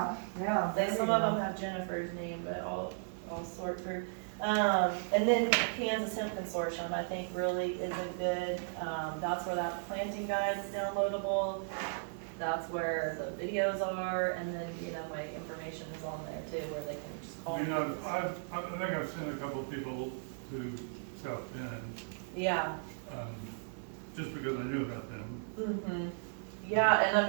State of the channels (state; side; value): silent; left; 54 dB below the other